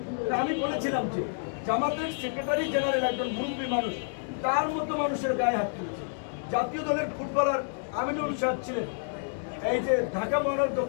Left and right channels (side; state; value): right; silent; digital silence